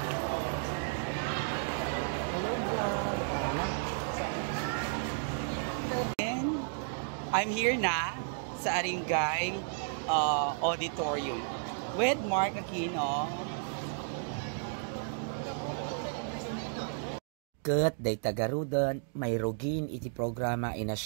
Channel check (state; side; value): silent; left; digital silence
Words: I'm here na sa Aringay Auditorium with Mark Aquino. Kat day tagarudon, may rugin iti programa in a